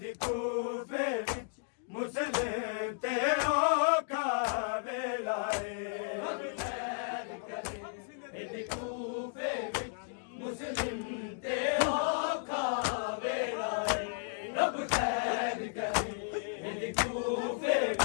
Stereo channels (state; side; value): silent; right; digital silence